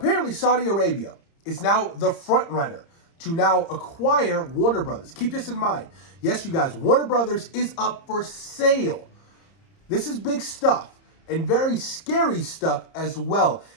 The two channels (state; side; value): late; right; 30 ms